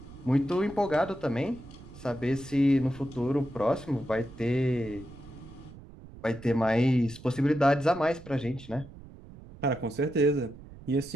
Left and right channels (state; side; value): noise; right; rumble, 18 dB below the sound